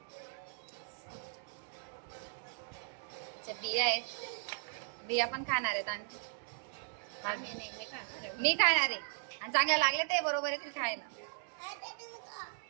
बिया आहेत. बिया पण खाणार आहेत आणि मी खाणार आहे. आणि चांगले लागले ते बरोबर येतील खायला.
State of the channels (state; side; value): silent; left; digital silence